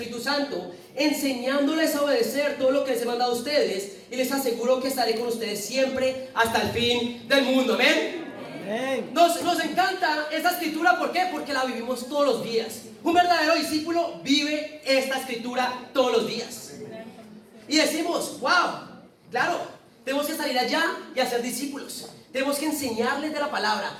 Santo, enseñándoles a obedecer todo lo que les he mandado a ustedes, y les aseguro que estaré con ustedes siempre hasta el fin del mundo. Amén. Nos encanta esta escritura. ¿Por qué? Porque la vivimos todos los días. Un verdadero discípulo vive esta escritura todos los días. Y decimos: wow, claro, tenemos que salir allá y hacer discípulos. Tenemos que enseñarles de la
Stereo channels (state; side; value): identical; both; correlation 1.00